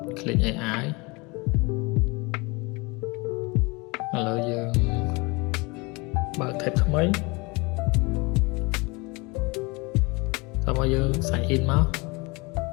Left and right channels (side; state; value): right; quieter; 26.8 dB